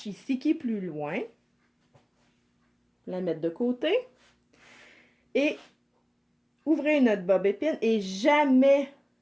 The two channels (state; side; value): identical; both; correlation 1.00